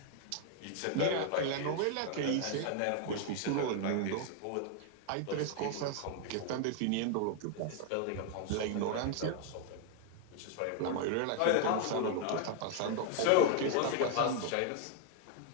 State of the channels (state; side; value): different; both; correlation 0.00